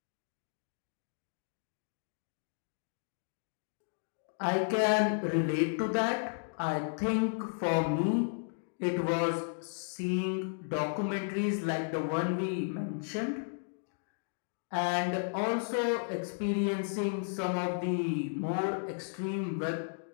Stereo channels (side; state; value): right; silent; digital silence